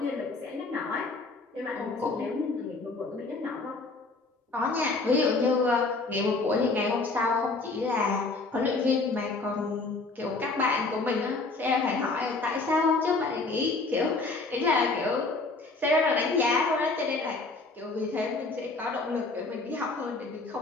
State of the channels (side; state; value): right; quieter; 3.6 dB